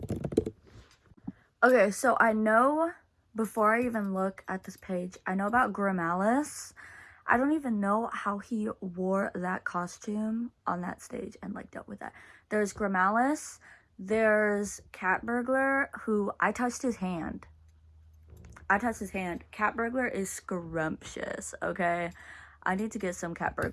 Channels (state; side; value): identical; both; correlation 1.00